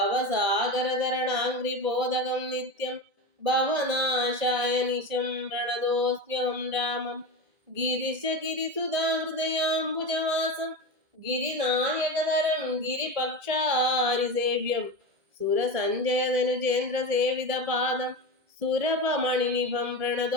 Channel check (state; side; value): late; left; 1.6 ms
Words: നിത്യം ഭവനാശായ നിശം പ്രണതോസ്മ്യഹം രാമം. ഗിരിശഗിരിസുധാഹൃദയാംബുജവാസം ഗിരിനായകതരം ഗിരിപക്ഷാരിസേവ്യം സുരസഞ്ജയധനുജേന്ദ്രസേവിതപാദം സുരഭമണിനിഭം